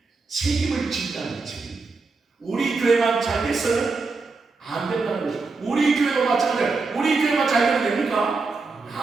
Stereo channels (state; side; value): quieter; left; 4.1 dB